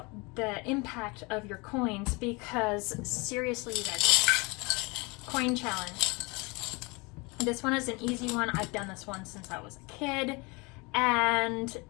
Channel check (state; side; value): quieter; right; 27.4 dB